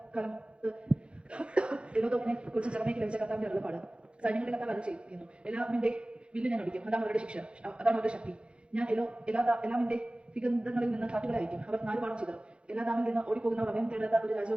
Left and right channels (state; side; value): late; left; 0.058 ms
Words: ഏലോമിനെ കുറിച്ച് ജെറമ്യായ്ക്ക് ലഭിച്ച കർത്താവിന്റെ അരുളപ്പാട്. സൈന്യങ്ങളുടെ കർത്താവ് അരുൾ ചെയ്യുന്നു. എല്ലാമിന്റെ വില്ല് ഞാൻ ഒടിക്കും. അതാണ് അവരുടെ ശിക്ഷ, അതാണ് അവരുടെ ശക്തി. ഞാൻ എല്ലാമിന്റെ വിഗന്ധങ്ങളിൽ നിന്ന് കാറ്റുകളെ അയക്കും. അവർ 4 പാഠം ചെയ്തു. എല്ലാദാമിൽ നിന്ന് ഓടിപ്പോകുന്നവർ അഭയം തേടാത്ത ഒരു രാജ്യം